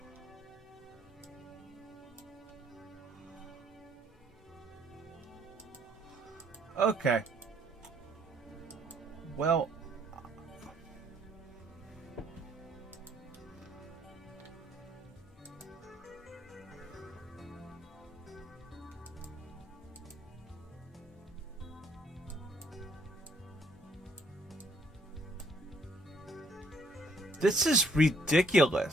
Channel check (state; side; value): normal; both; correlation 0.65